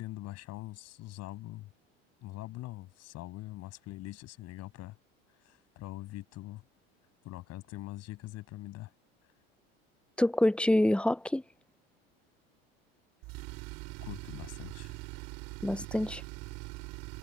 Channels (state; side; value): normal; both; correlation 0.88